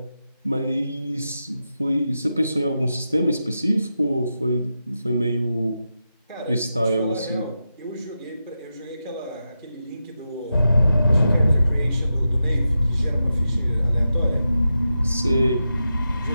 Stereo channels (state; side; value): inverted; both; correlation -0.89